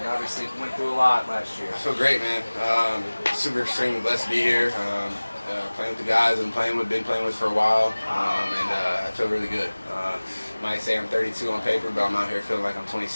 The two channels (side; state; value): both; inverted; correlation -1.00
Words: Obviously, went through a lot last year. I feel great, man. Super extremely blessed to be here. Playing with the guys been playing with for a while, and I feel really good. Might say I'm 32 on paper, but I'm out here feeling like I'm